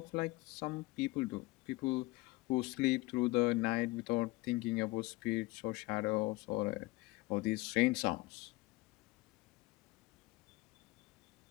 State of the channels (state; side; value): quieter; right; 21.5 dB